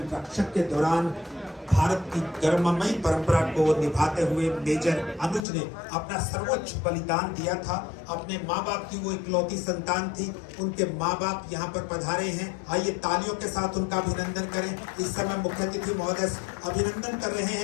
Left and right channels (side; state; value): right; drops out; at 5.4 s